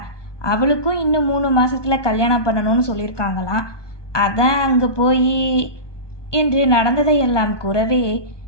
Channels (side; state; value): right; late; 1.2 ms